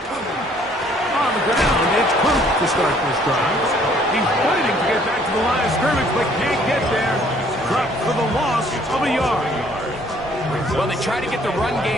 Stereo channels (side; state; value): both; normal; correlation 0.61